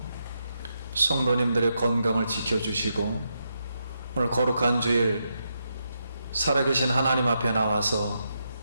성도님들의 건강을 지켜주시고 오늘 거룩한 주일 살아계신 하나님 앞에 나와서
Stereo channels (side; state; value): both; inverted; correlation -0.83